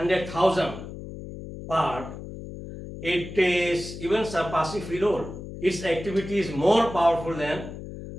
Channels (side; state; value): left; noise; hum, 11 dB below the sound